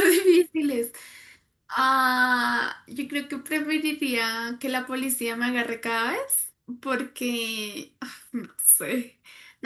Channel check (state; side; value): identical; both; correlation 1.00